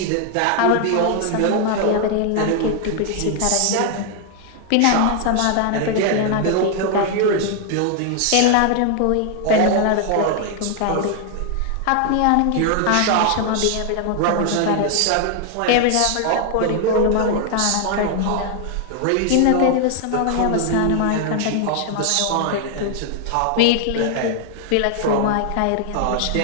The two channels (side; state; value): both; different; correlation 0.00